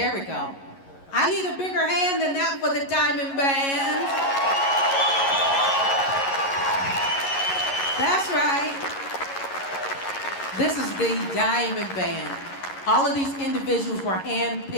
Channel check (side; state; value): right; late; 11 ms